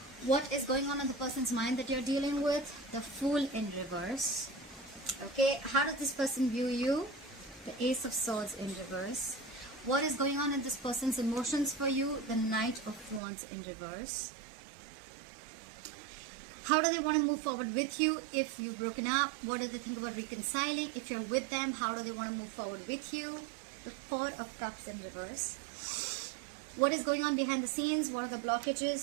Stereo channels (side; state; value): left; drops out; at 13.2 s